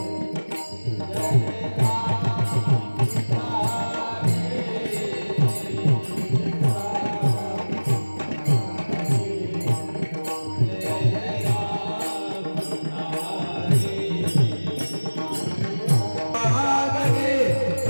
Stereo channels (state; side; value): inverted; both; correlation -1.00